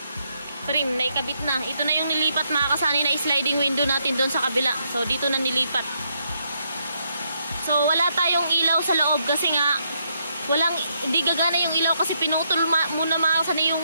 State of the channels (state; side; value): inverted; both; correlation -0.77